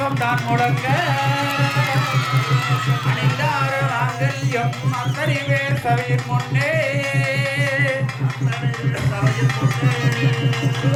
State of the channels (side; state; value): both; identical; correlation 1.00